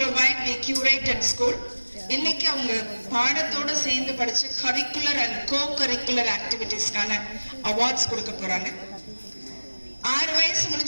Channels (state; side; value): inverted; both; correlation -1.00